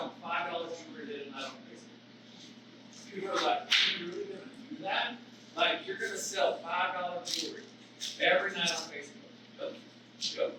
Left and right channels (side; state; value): both; identical; correlation 1.00